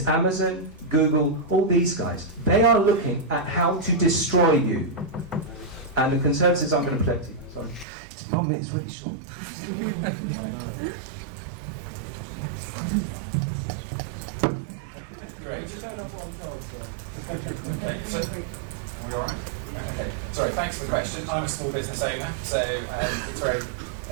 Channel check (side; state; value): left; drops out; at 7.9 s